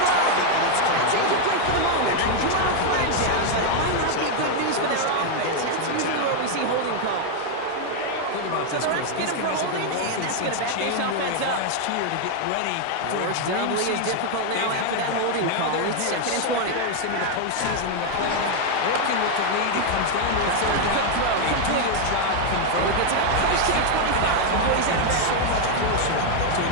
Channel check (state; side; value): different; both; correlation 0.01